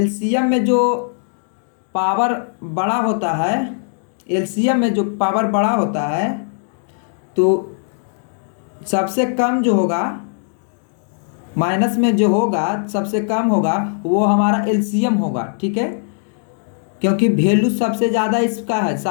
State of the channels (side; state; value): right; silent; digital silence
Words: में जो पावर बड़ा होता है, एलसीएम में जो पावर बड़ा होता है तो सबसे कम जो होगा, माइनस में जो होगा सबसे कम होगा वो हमारा एलसीएम होगा, ठीक है। क्योंकि वैल्यू सबसे ज़्यादा इसका है